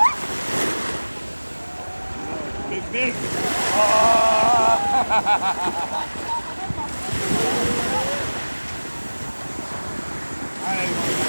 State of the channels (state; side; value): inverted; both; correlation -1.00